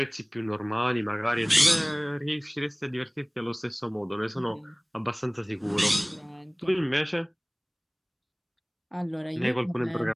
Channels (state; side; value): identical; both; correlation 1.00